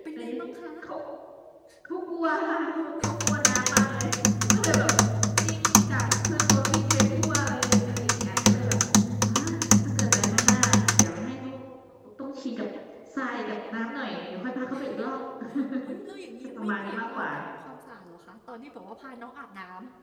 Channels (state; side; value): identical; both; correlation 1.00